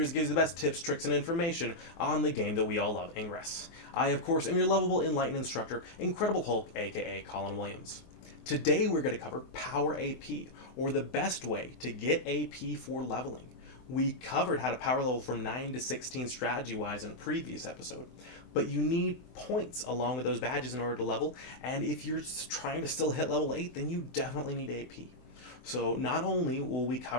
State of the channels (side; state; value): right; late; 24 ms